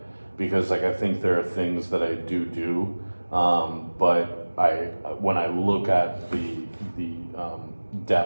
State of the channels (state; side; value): inverted; both; correlation -1.00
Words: because like I think there are things that I do, but when I look at the